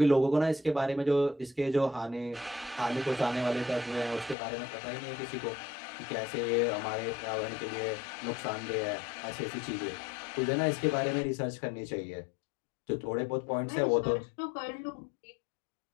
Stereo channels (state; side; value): drops out; right; at 4.4 s